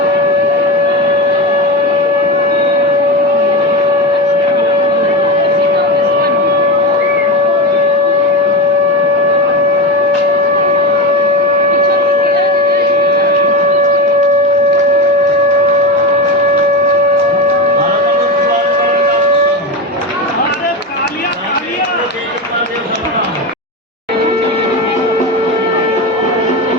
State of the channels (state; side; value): normal; both; correlation 0.19